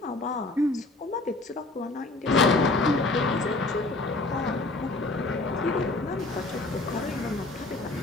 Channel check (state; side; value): quieter; right; 3.1 dB